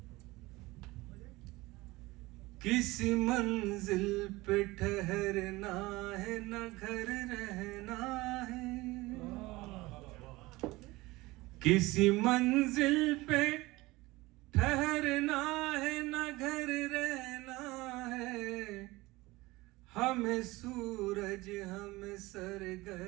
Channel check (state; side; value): quieter; left; 20.6 dB